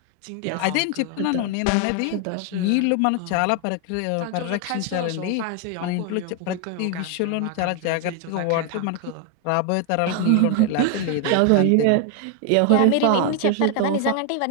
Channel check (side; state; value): both; different; correlation 0.00